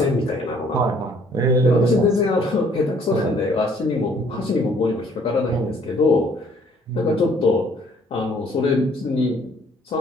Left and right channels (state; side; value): normal; both; correlation 0.61